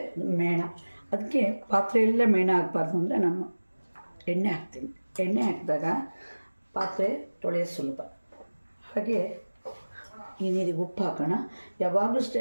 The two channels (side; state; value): both; inverted; correlation -1.00